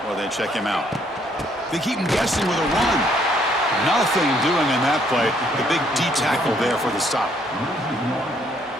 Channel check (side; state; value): both; normal; correlation 0.67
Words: while they check him out. They keep him guessing with a run. Nothing doing in that play. The big D tackle there for the stop.